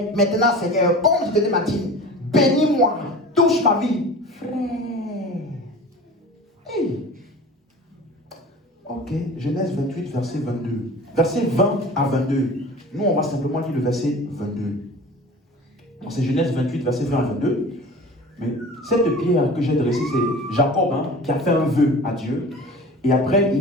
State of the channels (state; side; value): normal; both; correlation 0.39